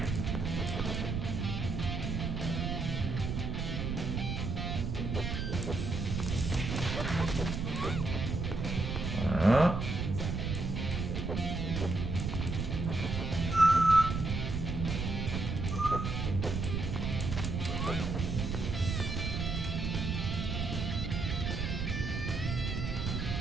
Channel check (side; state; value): right; noise; rumble, 2 dB below the sound